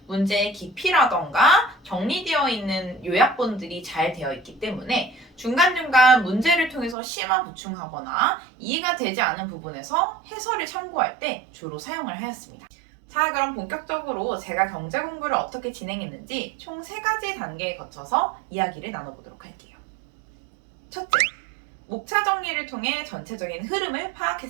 문제의 깊이라던가 정리되어 있는 요약본들이 잘 되어 있기 때문에 중간중간 문제를 통해서 심화 보충하거나 이해가 되지 않은 부분에서 해설을 참고할 때 주로 사용을 하였습니다. 자, 그럼 본격적으로 제가 경제 공부를 어떻게 진행했는지 총 3가지 단계에 거쳐서 이야기를 나눠보도록 할게요. 첫째, 목차 정리를 통해 전체적인 흐름을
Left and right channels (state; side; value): drops out; left; at 7.0 s